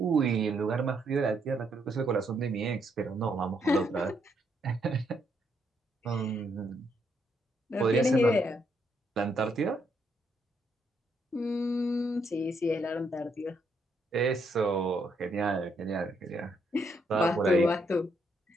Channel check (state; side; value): normal; both; correlation 0.74